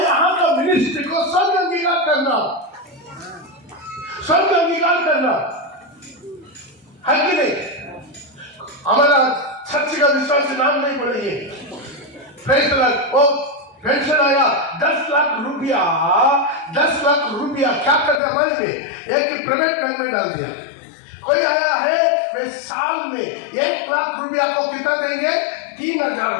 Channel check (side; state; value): right; drops out; at 18.2 s